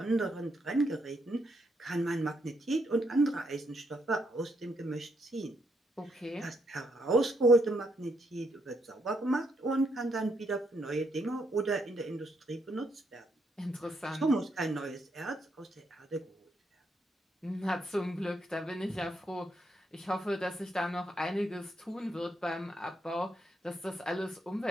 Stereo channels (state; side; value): normal; both; correlation 0.76